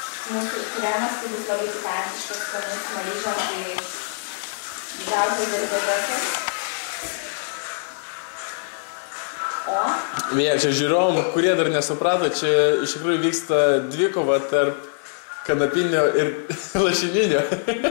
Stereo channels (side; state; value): right; silent; digital silence